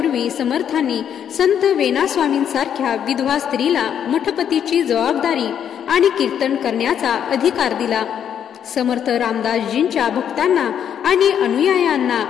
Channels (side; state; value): right; quieter; 8.9 dB